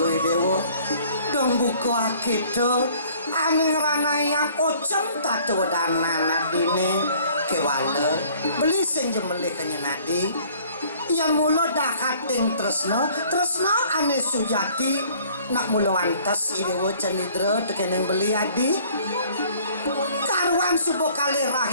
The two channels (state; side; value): inverted; both; correlation -0.56